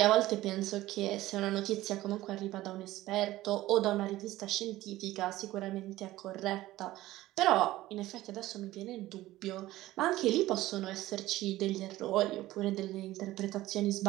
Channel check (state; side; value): quieter; left; 16.3 dB